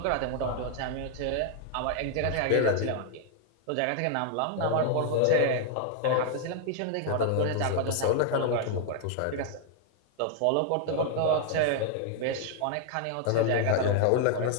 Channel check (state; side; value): different; both; correlation 0.00